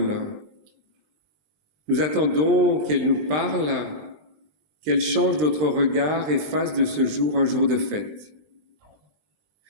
Nous attendons qu'elle nous parle, qu'elle change notre regard et fasse de ce jour un jour de fête.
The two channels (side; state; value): left; late; 20 ms